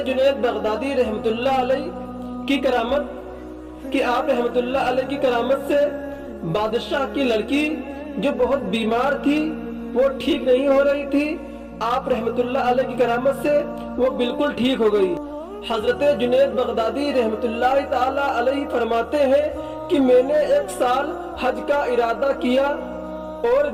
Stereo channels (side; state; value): both; identical; correlation 1.00